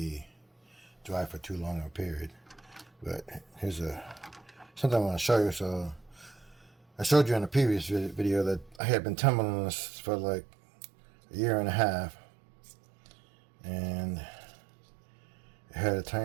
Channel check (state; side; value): drops out; left; at 8.8 s